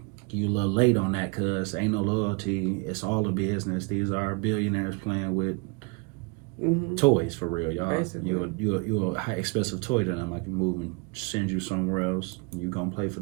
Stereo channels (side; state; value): left; quieter; 30.4 dB